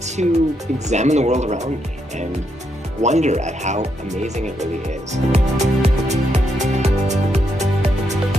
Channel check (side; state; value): both; normal; correlation 0.79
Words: to examine the world around me and wonder at how amazing it really is.